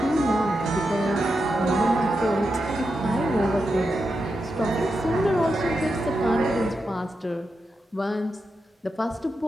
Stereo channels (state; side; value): normal; both; correlation 0.87